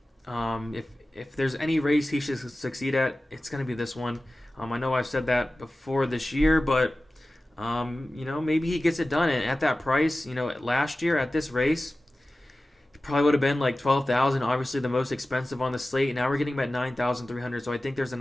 If there's any race he should succeed at, it's going to be this one. I know I've said that before this year, but maybe he gets it done. And at that price, last year at this race, he probably would have been like 12,000, obviously the most expensive on the slate. Now we're getting him at 9,300, so I think there's a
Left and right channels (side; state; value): both; normal; correlation 0.96